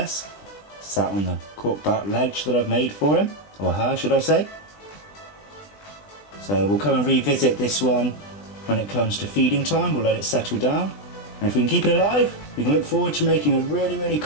sat on the corkback ledge that I've made for him, or her should I say. So we'll come and revisit this one when it comes to feeding time. We'll let it settle down, and if we can keep it alive, we can look forward to making a really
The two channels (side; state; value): right; late; 20 ms